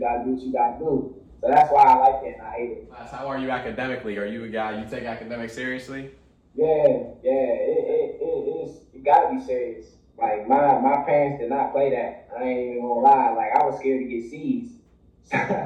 do what you gotta do. So that's why I like it and I hate it. How are you academically? Are you a guy you take academics seriously? Yeah, it gotta be serious. Like my parents did not play that. I ain't even gonna lie. Like I was scared to get C's.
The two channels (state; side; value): identical; both; correlation 1.00